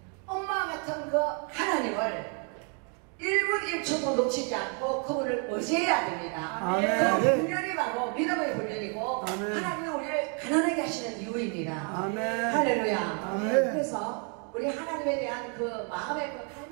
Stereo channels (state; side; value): quieter; left; 39.6 dB